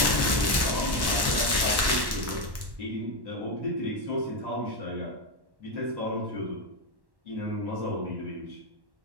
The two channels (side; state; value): left; late; 1.1 ms